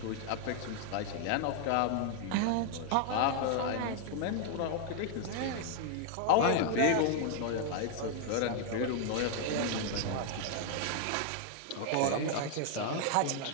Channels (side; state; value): both; different; correlation 0.00